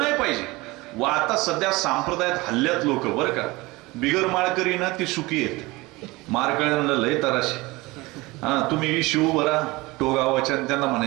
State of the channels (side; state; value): left; quieter; 21.9 dB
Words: पाहिजे. व आता सध्या संप्रदायात हल्ल्यात लोक बरं का. बिगर माळकरी ना ती सुखी आहेत, माळकऱ्यांना लय तराशी. तुम्ही शिव बरा टोगावाच्या त्यांना